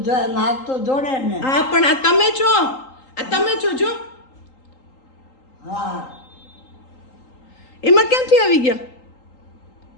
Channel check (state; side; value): late; right; 3.8 ms